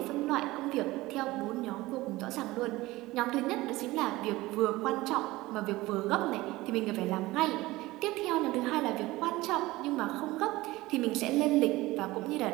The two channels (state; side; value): quieter; left; 19.2 dB